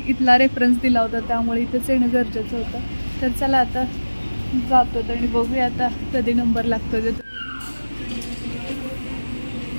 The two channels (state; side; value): inverted; both; correlation -1.00